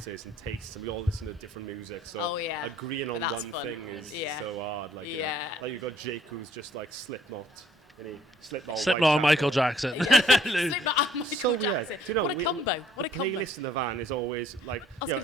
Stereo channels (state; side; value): normal; both; correlation 0.61